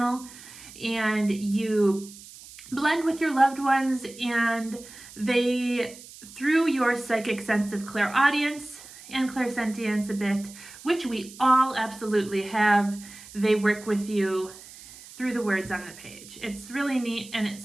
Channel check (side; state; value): right; noise; hiss, 18 dB below the sound